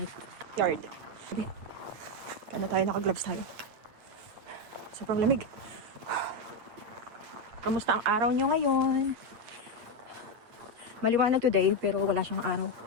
yard. Paano tayo? Naka-gloves tayo. Sobrang lamig. Kamusta ang araw nyo ngayon? Maliwanag today, pero wala siyang araw.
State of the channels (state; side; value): late; left; 8.7 ms